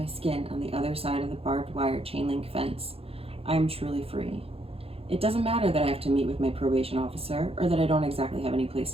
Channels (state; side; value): late; left; 0.28 ms